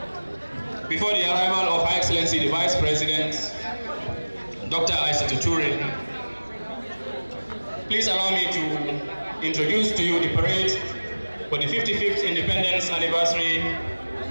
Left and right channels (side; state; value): both; inverted; correlation -1.00